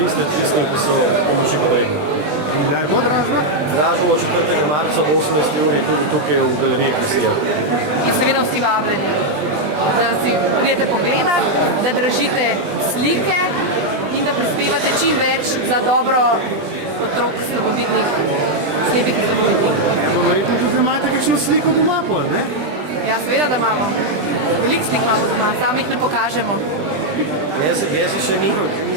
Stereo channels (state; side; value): late; left; 20 ms